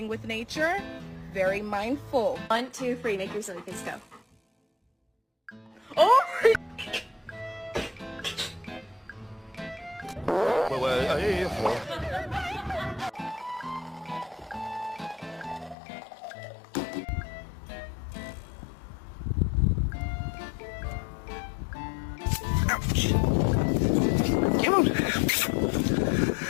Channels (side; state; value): right; drops out; at 15.8 s